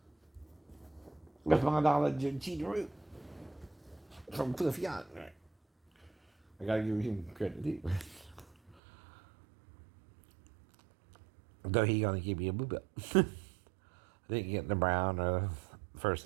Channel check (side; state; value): left; drops out; at 8.8 s